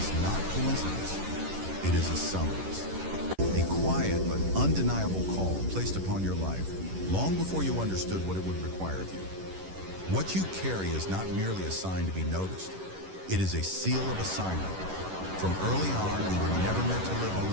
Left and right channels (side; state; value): left; late; 11 ms